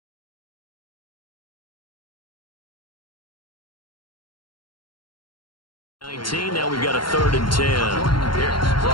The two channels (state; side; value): late; right; 0.72 ms